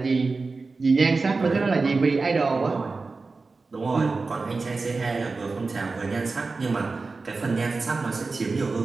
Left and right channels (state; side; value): quieter; left; 4.0 dB